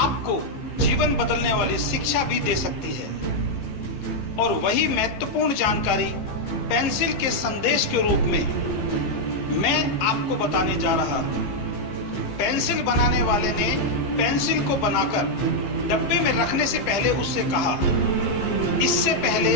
जीवन बदलने वाली शिक्षा भी दे सकती है। और वही महत्वपूर्ण जानकारी पेंसिल के संदेश के रूप में मैं आपको बताने जा रहा हूं। पेंसिल बनाने वाले ने पेंसिल को बनाकर डब्बे में रखने से पहले उससे कहा, इससे पहले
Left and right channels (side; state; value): right; late; 15 ms